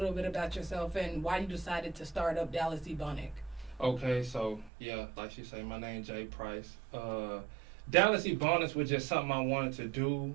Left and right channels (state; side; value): drops out; left; at 4.7 s